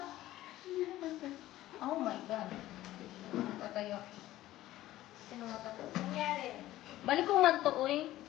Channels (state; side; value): quieter; right; 15.1 dB